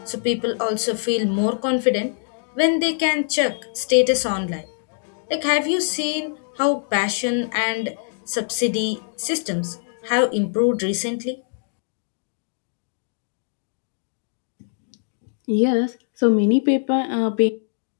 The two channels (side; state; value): right; silent; digital silence